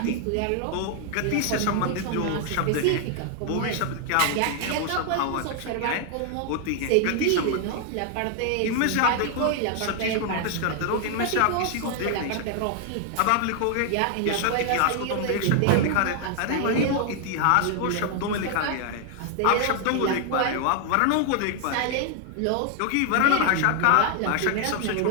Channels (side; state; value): both; different; correlation 0.00